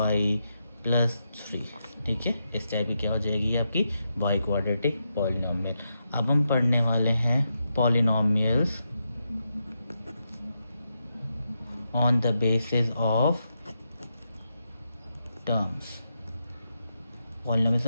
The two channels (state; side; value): inverted; both; correlation -0.84